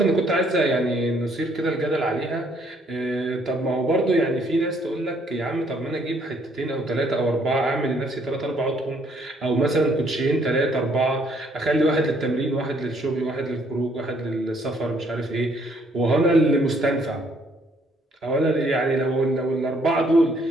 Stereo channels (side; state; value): both; normal; correlation 0.66